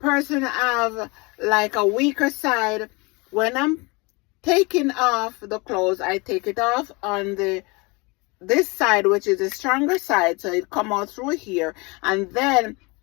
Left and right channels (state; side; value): quieter; right; 27.2 dB